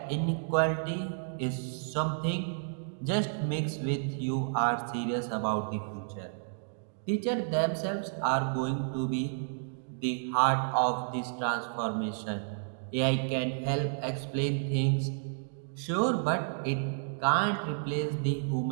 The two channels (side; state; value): left; silent; digital silence